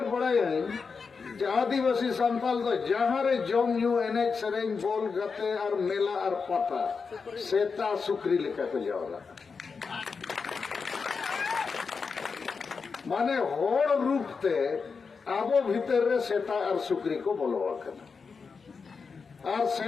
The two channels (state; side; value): quieter; right; 5.2 dB